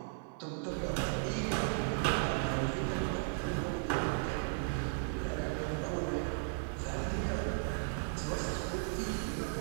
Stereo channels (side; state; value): left; silent; 54 dB below the other